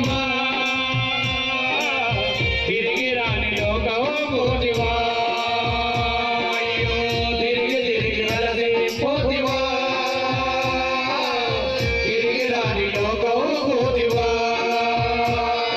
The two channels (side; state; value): both; identical; correlation 1.00